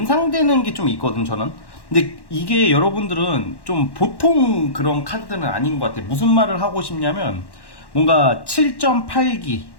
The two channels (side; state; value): right; late; 1.1 ms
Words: 게 좀 있거든 저는. 근데 이게 여러분들은 좀 보통 그런 카드들은 아닌 것 같아요. 무슨 말을 하고 싶냐면 뭔가 7.8기